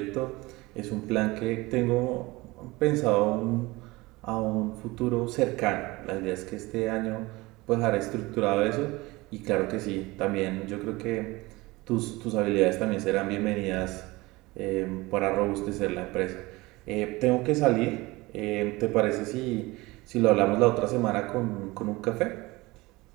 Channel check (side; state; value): left; quieter; 21.7 dB